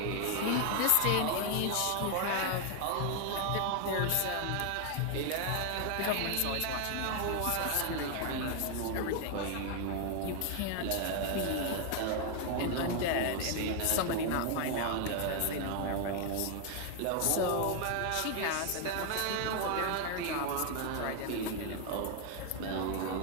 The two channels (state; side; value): different; both; correlation 0.01